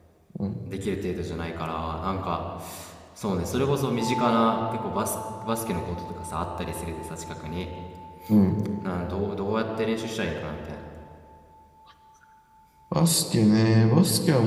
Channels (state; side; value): identical; both; correlation 1.00